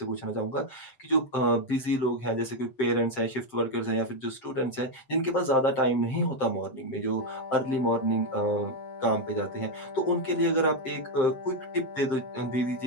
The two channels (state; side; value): late; right; 7.6 ms